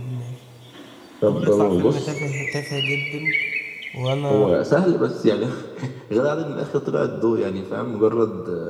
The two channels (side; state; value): both; identical; correlation 1.00